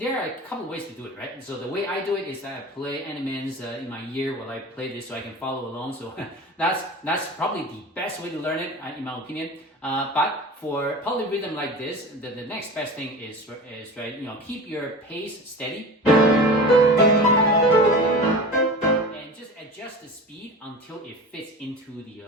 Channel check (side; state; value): both; normal; correlation 0.33